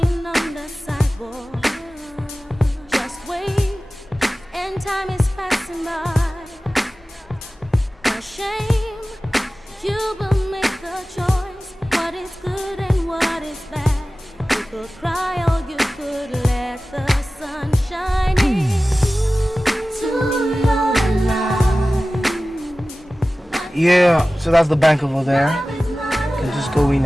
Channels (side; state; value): both; normal; correlation 0.96